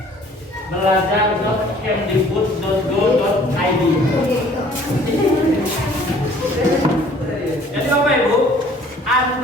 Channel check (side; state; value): both; normal; correlation 0.54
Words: belajar.kemdikbud.go.id. Jadi Bapak Ibu,